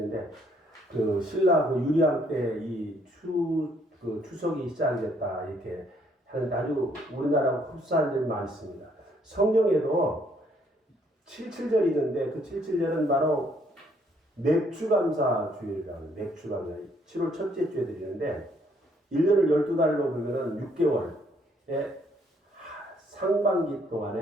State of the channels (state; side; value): normal; both; correlation 0.67